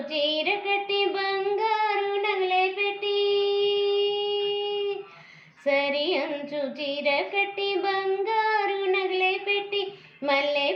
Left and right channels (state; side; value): identical; both; correlation 1.00